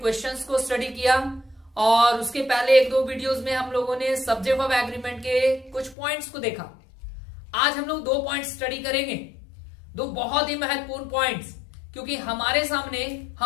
को स्टडी किया और उसके पहले एक दो वीडियोस में हम लोगों ने सब्जेक्ट ऑफ एग्रीमेंट के कुछ पॉइंट्स को देखा। आज हम लोग दो पॉइंट्स स्टडी करेंगे, दो बहुत ही महत्वपूर्ण पॉइंट्स, क्योंकि हमारे सामने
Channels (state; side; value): drops out; right; at 6.0 s